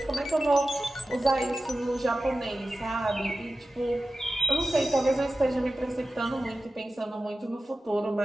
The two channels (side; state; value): both; normal; correlation 0.94